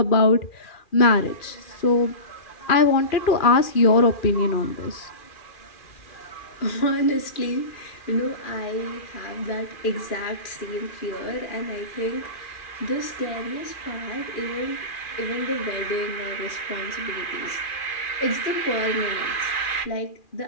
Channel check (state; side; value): late; right; 2.4 ms